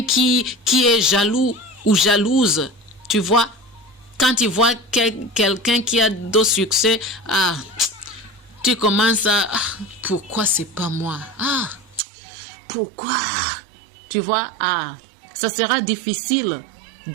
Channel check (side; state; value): left; drops out; at 12.0 s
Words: qui est jaloux ou jalouse, tu vois, quand tu vois quelqu'un qui a de succès, tu commences à... pourquoi c'est pas moi? Pourquoi? Tu vois, ça sera difficile